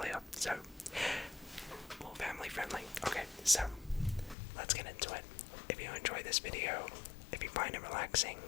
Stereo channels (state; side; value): drops out; right; at 4.4 s